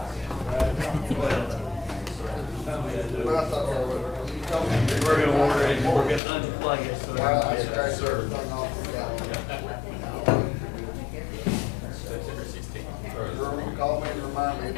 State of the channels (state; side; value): drops out; right; at 6.2 s